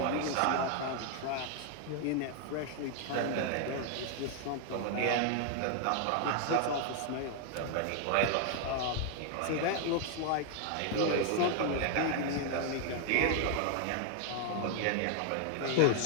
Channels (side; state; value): both; different; correlation 0.00